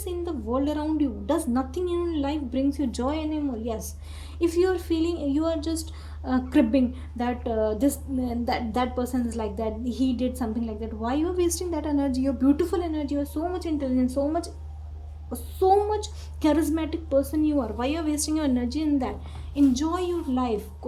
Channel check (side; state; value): both; identical; correlation 1.00